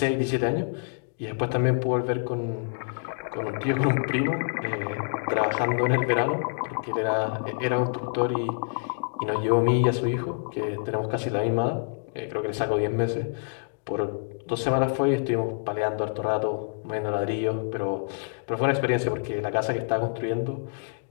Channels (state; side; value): silent; right; digital silence